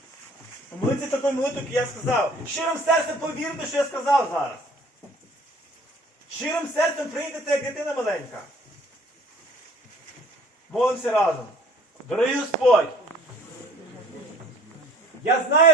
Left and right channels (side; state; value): both; normal; correlation 0.52